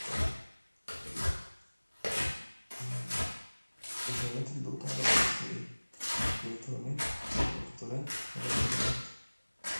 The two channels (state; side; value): inverted; both; correlation -1.00